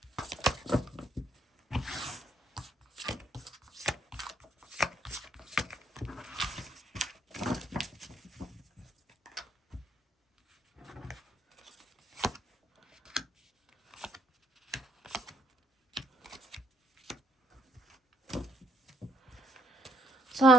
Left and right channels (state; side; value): normal; both; correlation 0.69